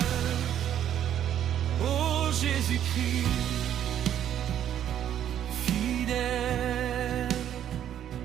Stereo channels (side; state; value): left; quieter; 10.4 dB